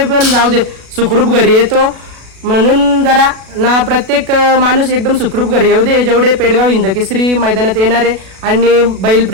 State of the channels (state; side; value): late; left; 37 ms